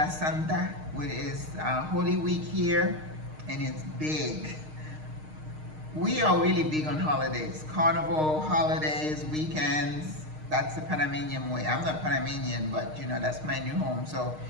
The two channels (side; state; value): left; late; 6.5 ms